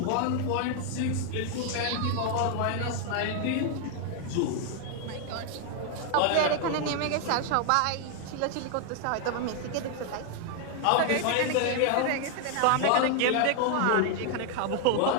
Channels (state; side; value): different; both; correlation 0.00